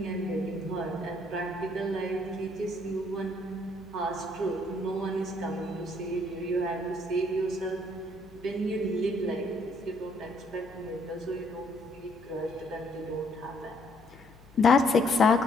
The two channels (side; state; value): left; noise; hum, 23 dB below the sound